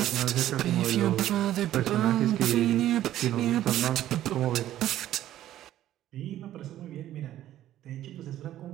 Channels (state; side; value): quieter; left; 12.9 dB